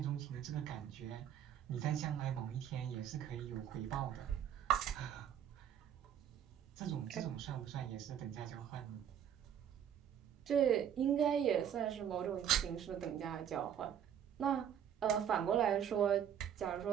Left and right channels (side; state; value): left; quieter; 9.3 dB